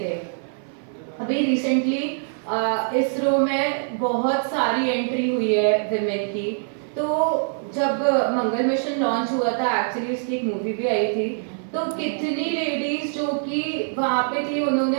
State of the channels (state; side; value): silent; left; 56 dB below the other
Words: अभी रिसेंटली इसरो में बहुत सारी एंट्री हुई है विमेन की, तो जब मंगल मिशन लॉन्च हुआ था, एक्चुअली उसकी एक मूवी भी आई थी, तो कितनी लेडीज जो कि वहां पे थी,